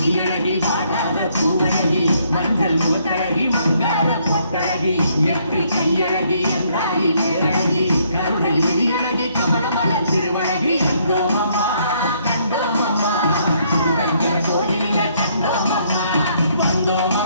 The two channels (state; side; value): inverted; both; correlation -0.69